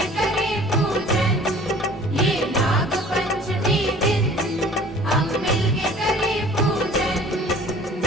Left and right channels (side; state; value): both; normal; correlation 0.49